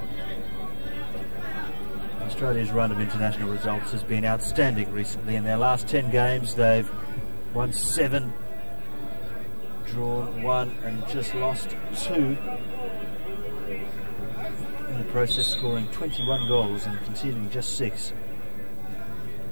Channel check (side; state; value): both; inverted; correlation -1.00